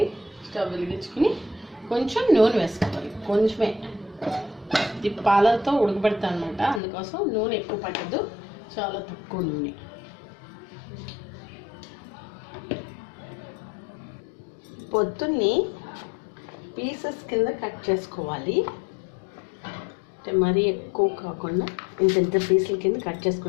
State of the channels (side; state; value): right; drops out; at 6.8 s